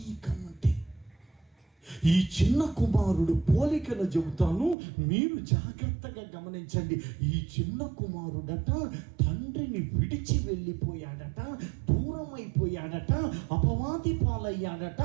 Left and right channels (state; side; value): drops out; left; at 4.8 s